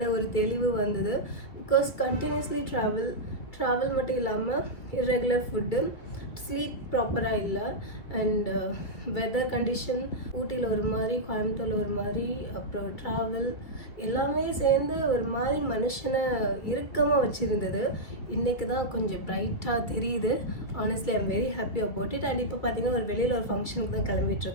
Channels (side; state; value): right; late; 2.1 ms